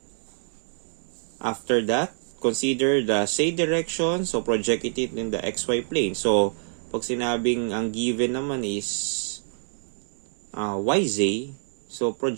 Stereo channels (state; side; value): silent; left; digital silence